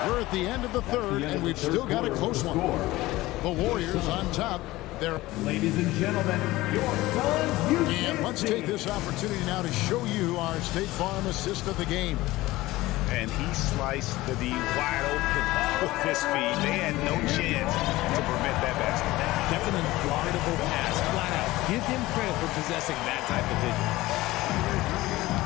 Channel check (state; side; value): quieter; right; 18.3 dB